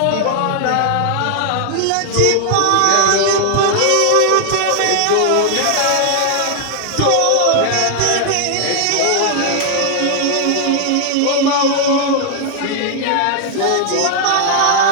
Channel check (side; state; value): both; different; correlation -0.01